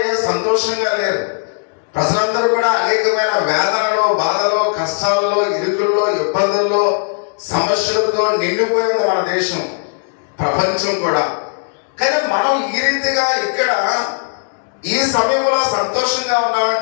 సంతోషంగా లేరు. ప్రజలందరూ కూడా అనేకమైన వేదనలో, బాధలో, కష్టాల్లో, ఇరుకుల్లో, ఇబ్బందుల్లో, సమస్యలతో నిండిపోయింది మన దేశం, ప్రపంచం కూడా. కానీ మనం ఈ రీతిగా ఇక్కడ ఈ సమయంలో సంతోషంగా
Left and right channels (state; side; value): silent; right; 65 dB below the other